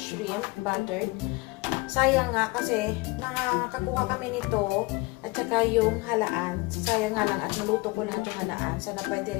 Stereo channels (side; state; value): right; quieter; 24.4 dB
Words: buttered. Sayang nga kasi nakakakuha kami nito at saka yung halaan. Sayang nga lang at naluto ko lahat yung halaan. Sana pwede